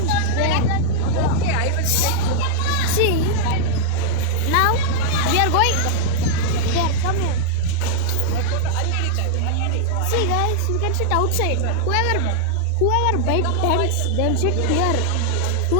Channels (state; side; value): different; both; correlation -0.01